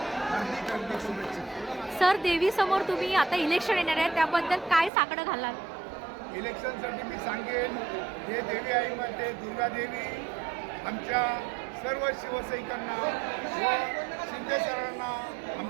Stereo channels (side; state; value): left; drops out; at 4.9 s